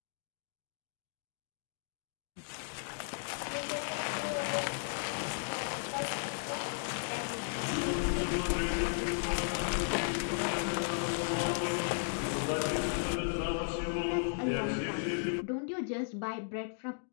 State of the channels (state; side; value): silent; right; digital silence